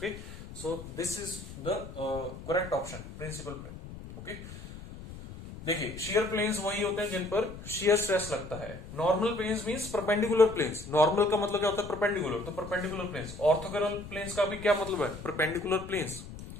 so this is the correct option, principal plane. Okay, देखिए शियर प्लेन्स वही होते हैं जिन पर शियर स्ट्रेस लगता है। Normal planes means perpendicular planes. Normal का मतलब क्या होता है? परपेंडिकुलर, तो परपेंडिकुलर प्लेन्स। ऑर्थोगोनल प्लेन्स का भी क्या मतलब है? Perpendicular planes.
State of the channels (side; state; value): left; noise; rumble, 13 dB below the sound